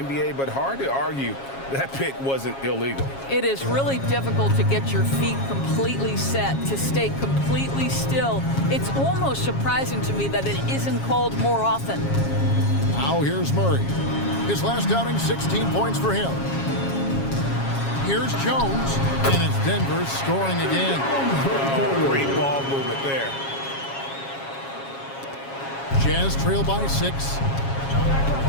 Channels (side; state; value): right; late; 7.3 ms